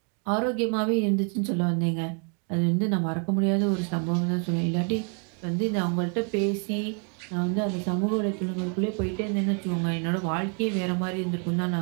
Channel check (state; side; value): quieter; left; 39.5 dB